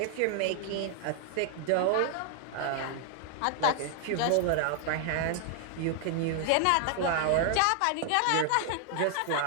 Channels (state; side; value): different; both; correlation 0.00